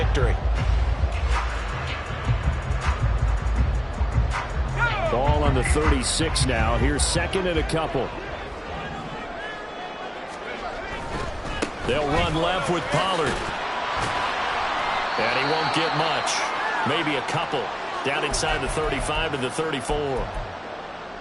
Ball on the 36 now. Here's second and a couple. They'll run left with Pollard. And he won't get much. Maybe a couple. Down inside the 35 to the 34.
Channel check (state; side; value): identical; both; correlation 1.00